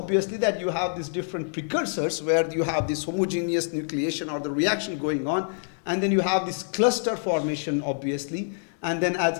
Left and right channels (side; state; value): right; silent; digital silence